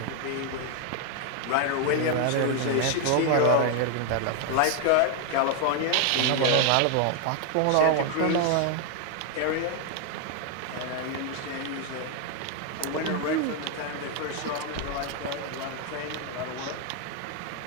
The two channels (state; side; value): different; both; correlation 0.00